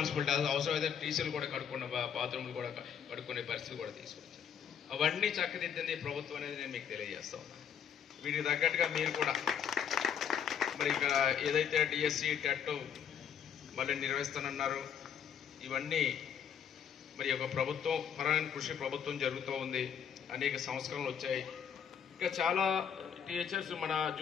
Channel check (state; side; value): quieter; right; 8.2 dB